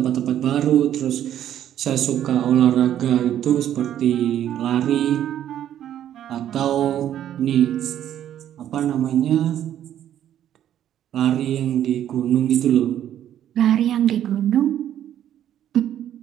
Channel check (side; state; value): left; quieter; 11.0 dB